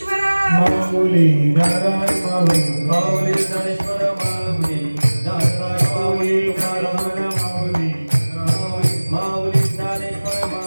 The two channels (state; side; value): inverted; both; correlation -1.00